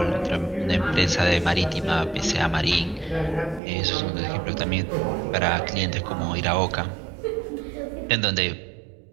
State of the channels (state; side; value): drops out; left; at 3.6 s